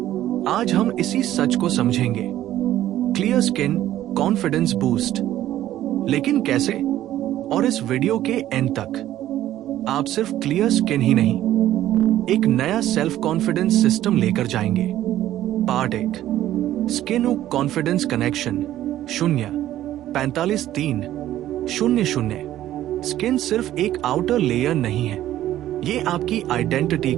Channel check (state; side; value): quieter; left; 13.2 dB